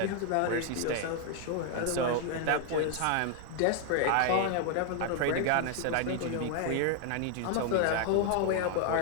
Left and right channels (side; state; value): both; different; correlation 0.00